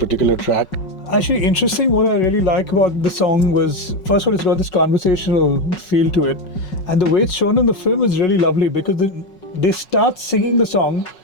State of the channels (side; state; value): right; late; 5.4 ms